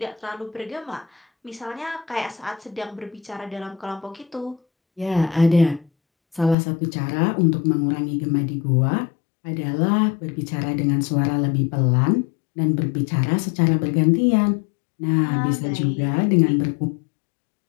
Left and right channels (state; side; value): drops out; right; at 6.6 s